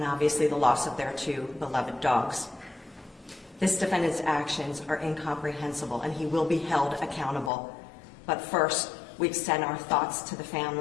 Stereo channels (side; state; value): right; drops out; at 7.5 s